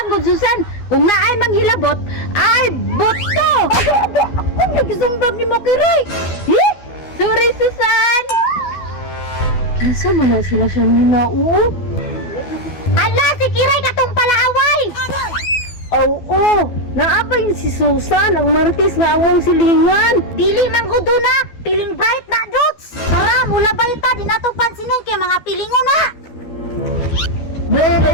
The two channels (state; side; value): late; right; 12 ms